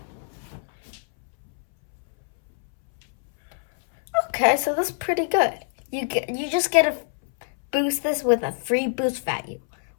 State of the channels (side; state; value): right; silent; 62 dB below the other